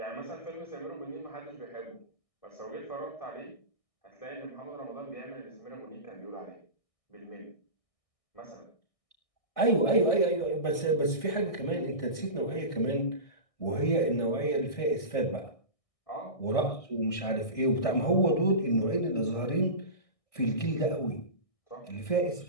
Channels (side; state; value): right; late; 1.6 ms